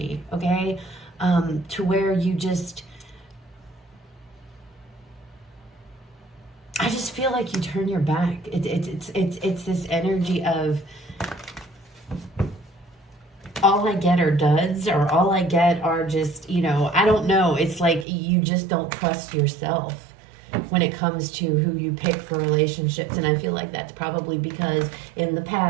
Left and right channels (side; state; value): left; drops out; at 18.1 s